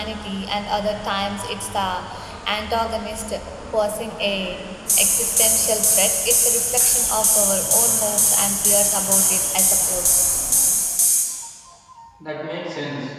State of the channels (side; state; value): both; identical; correlation 1.00